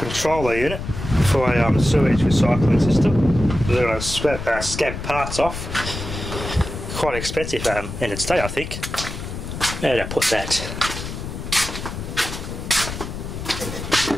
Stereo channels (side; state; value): left; noise; rumble, 7 dB below the sound